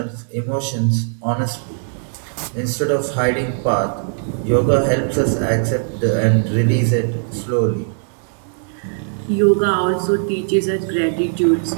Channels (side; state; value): left; silent; digital silence